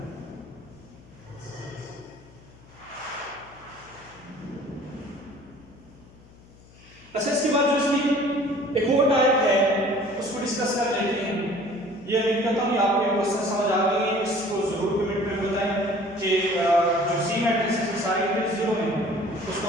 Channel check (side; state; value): left; noise; hum, 24 dB below the sound